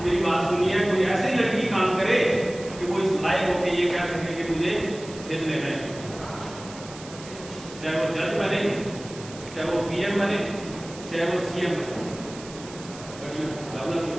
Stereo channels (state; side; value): noise; right; hiss, 16 dB below the sound